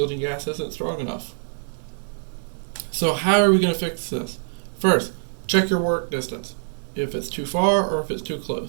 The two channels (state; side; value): silent; left; digital silence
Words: gas isn't strong enough. So how are we going to fix this? First, check your work distance, if it's too far or if it's too